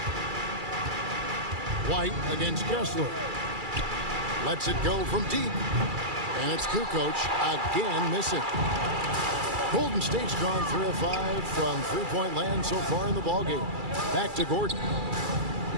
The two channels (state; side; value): late; left; 2.3 ms